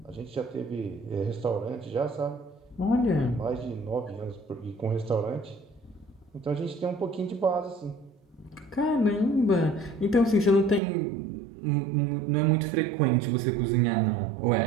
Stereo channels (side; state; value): left; drops out; at 10.8 s